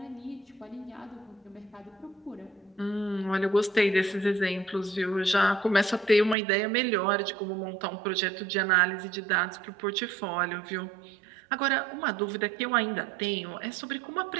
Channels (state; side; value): drops out; left; at 6.4 s